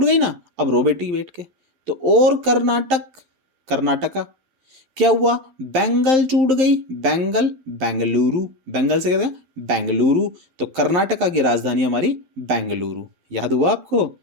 गई ना। अब रो बेटी बैठ के, तो और कर्नाटक, कर्नाटका क्या हुआ, बैंगल टूट गई। बैंगल बेंगलुरु, बैंगल से कहते हैं बेंगलुरु। तो कर्नाटका की राजधानी हमारी बेंगलुरु। याद हुआ आपको?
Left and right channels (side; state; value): left; late; 11 ms